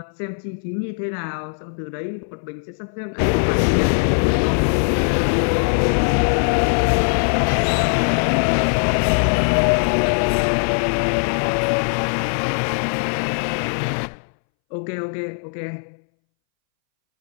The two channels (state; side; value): silent; right; 64 dB below the other